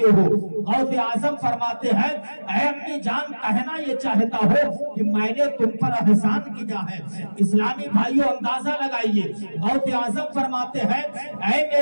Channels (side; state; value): both; inverted; correlation -1.00